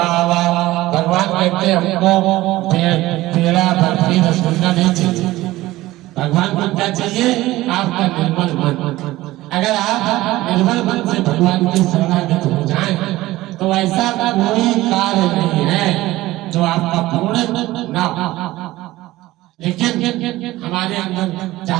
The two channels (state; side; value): quieter; left; 17.4 dB